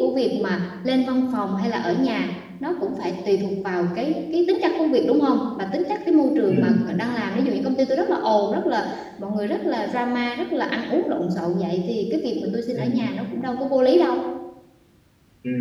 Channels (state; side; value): identical; both; correlation 1.00